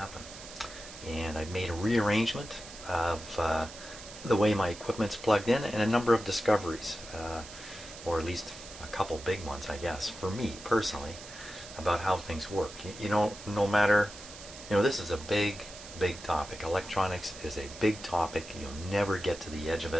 And I've made a rearrangement of the way my equipment's plugged in and a number of discoveries, or at least a couple big ones, I guess, for me personally, about how things work. You know, no matter, this is a big topic. Electronics is a big topic. You'll never get to the edge of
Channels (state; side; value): noise; right; hiss, 15 dB below the sound